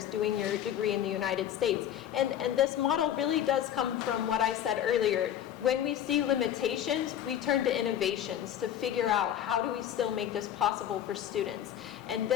doing your degree in the United States. And this model really does come from what I said earlier. When we see limitations, we turn to innovations to figure out how do we still make this possible for students. And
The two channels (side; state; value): right; quieter; 10.5 dB